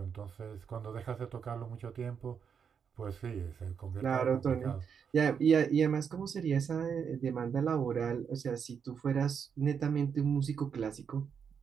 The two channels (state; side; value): quieter; left; 7.0 dB